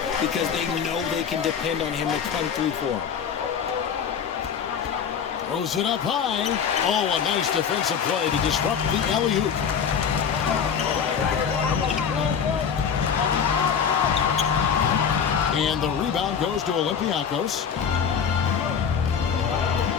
because they know they can depend on him to come through for them. Throws it up high. Oh, a nice defensive play to disrupt the alley-oop. And the rebound goes to Olympiacos.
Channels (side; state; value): right; quieter; 7.2 dB